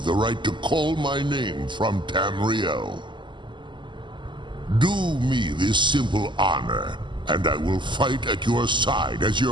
right to call my name from Tamriel. Do me this simple honor, and I will fight at your side as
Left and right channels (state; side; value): late; left; 0.23 ms